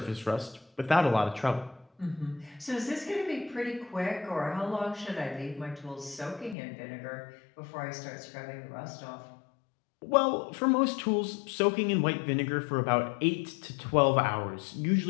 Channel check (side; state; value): right; drops out; at 6.6 s